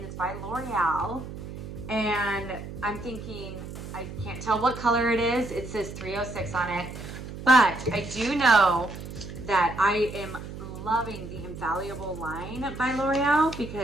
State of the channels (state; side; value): noise; right; hum, 10 dB below the sound